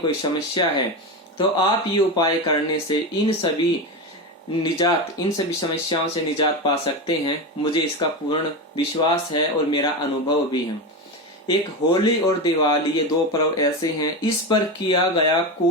समस्या है, तो आप ये उपाय करने से इन सभी समस्याओं से निजात पा सकते हैं। मुझे इसका पूर्ण विश्वास है और मेरा अनुभव भी है। एक होली और दिवाली, ये दो पर्व ऐसे हैं, इस पर किया गया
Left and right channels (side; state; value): both; normal; correlation 0.18